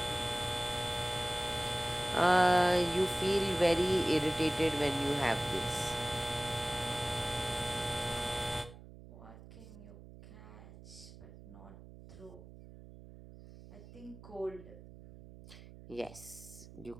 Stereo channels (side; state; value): right; noise; hum, 17 dB below the sound